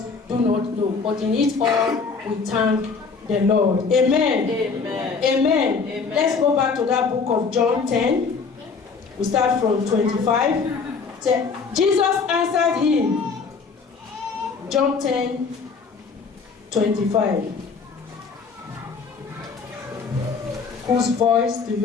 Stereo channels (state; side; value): quieter; right; 5.0 dB